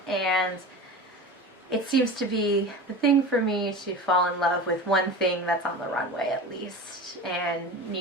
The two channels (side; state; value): both; normal; correlation 0.31